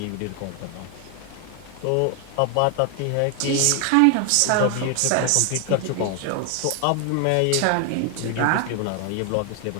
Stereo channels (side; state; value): both; different; correlation 0.00